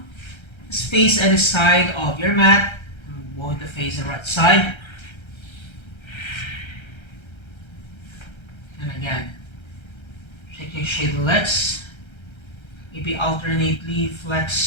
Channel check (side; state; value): right; late; 1.3 ms